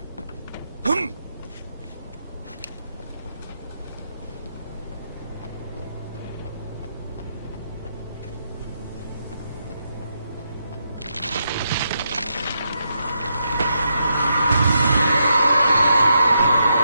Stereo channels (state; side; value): inverted; both; correlation -0.81